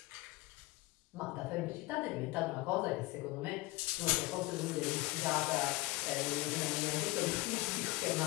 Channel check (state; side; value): quieter; right; 21.0 dB